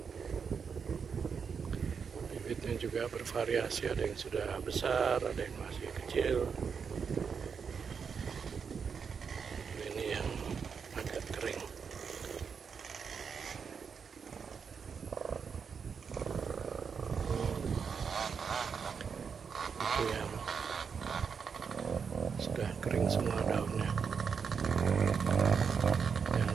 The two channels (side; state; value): left; quieter; 6.2 dB